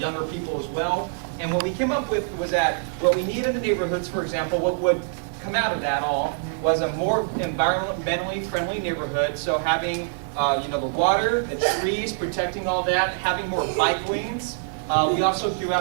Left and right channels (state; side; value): silent; left; digital silence